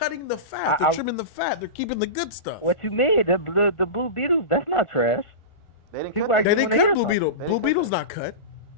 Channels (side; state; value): right; late; 1.4 ms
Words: the fat. They're trimming the fat. They're keeping the good stuff. What you mean? The Blue Beetles? That's not trash. They didn't People cut like- They didn't wanna cut hear Blue something. Beetle. Blue Beetle's not cut.